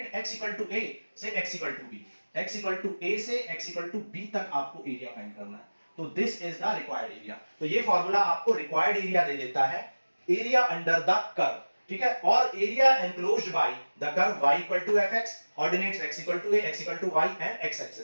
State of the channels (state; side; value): inverted; both; correlation -1.00